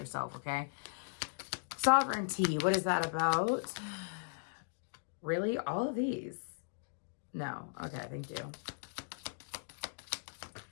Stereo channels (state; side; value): silent; right; digital silence